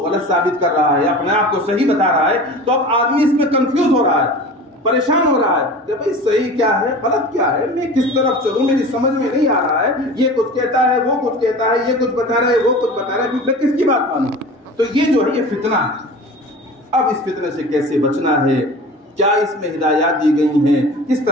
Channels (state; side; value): normal; both; correlation 0.37